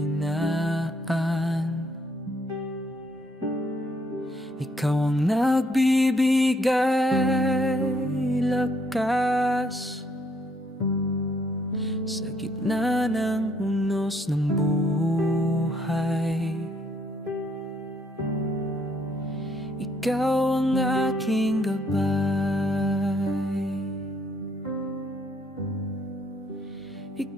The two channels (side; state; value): both; normal; correlation 0.70